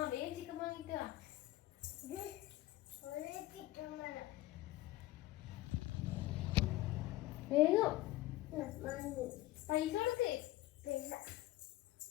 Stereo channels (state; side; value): quieter; right; 16.7 dB